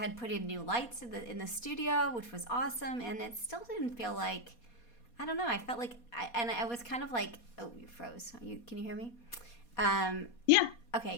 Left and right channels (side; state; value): right; late; 4.2 ms